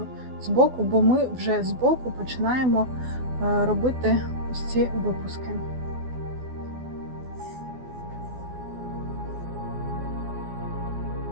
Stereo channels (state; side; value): late; left; 12 ms